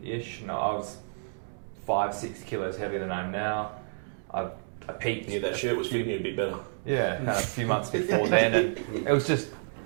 No, I was 5-6 kilos heavier than I am now. I peaked. Yeah, that shirt was fitting you a bit better. Yeah, kind of a few months before then, and it was just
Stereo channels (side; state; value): left; silent; digital silence